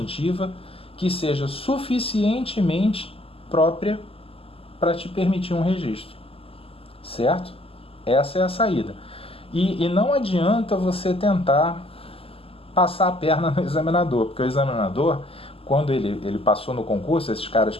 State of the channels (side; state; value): right; late; 0.28 ms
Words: que seja suficientemente própria para te permitir um registro, certo? Essa é a saída. E não adianta você tentar passar a perna no examinador, porque o examinador, quando ele passou no concurso, esses caras